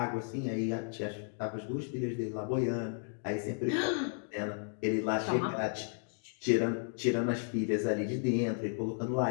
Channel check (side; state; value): right; silent; 55 dB below the other